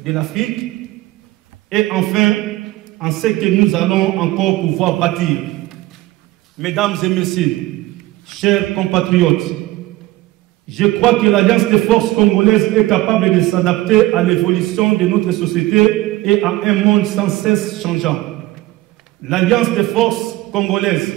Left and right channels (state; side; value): quieter; left; 17.8 dB